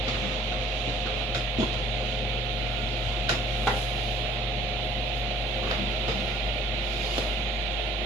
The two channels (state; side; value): normal; both; correlation 0.54